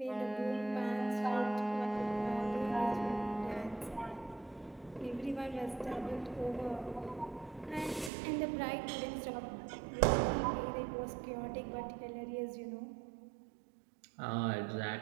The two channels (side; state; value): left; drops out; at 8.1 s